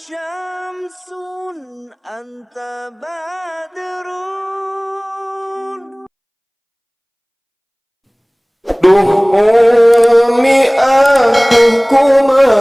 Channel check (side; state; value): both; identical; correlation 1.00